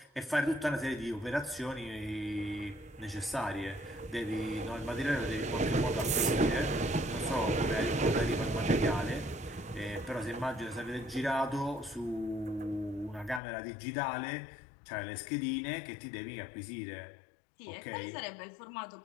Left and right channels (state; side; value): drops out; right; at 13.4 s